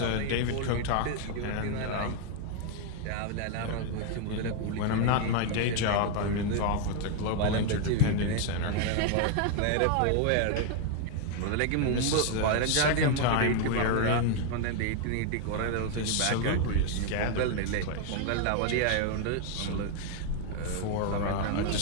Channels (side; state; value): both; different; correlation 0.00